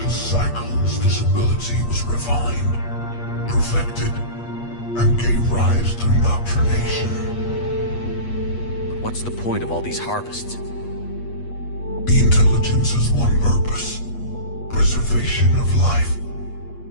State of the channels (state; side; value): late; right; 8.4 ms